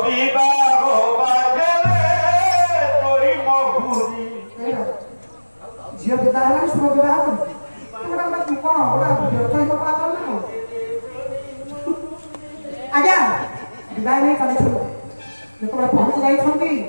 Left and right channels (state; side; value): inverted; both; correlation -1.00